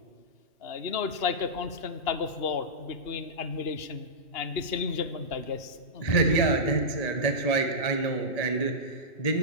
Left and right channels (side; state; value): right; late; 2.8 ms